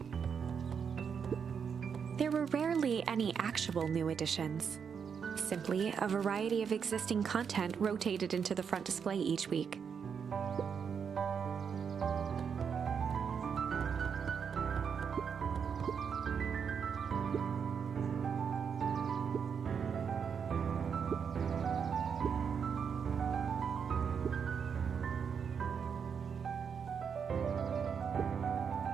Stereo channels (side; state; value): left; quieter; 6.8 dB